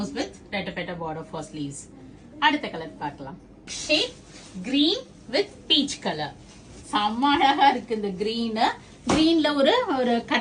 வித் ரெட்டப்பெட்ட border for sleeves. அடுத்த கலர் பார்க்கலாம். Shade green with peach color. செம்ம அழகா இருக்கு இந்த green. greenல ஒரு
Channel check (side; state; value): both; identical; correlation 1.00